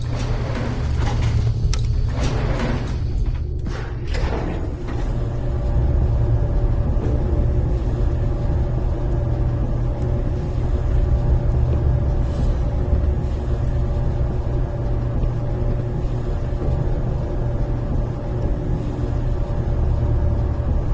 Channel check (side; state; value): both; identical; correlation 1.00